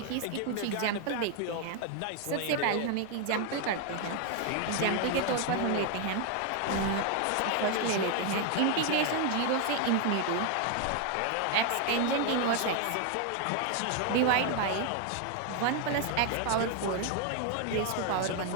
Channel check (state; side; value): different; both; correlation 0.01